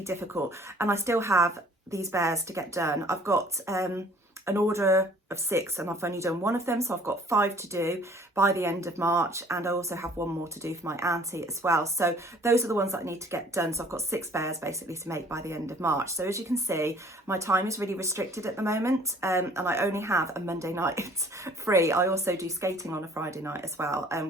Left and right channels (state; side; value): normal; both; correlation 0.54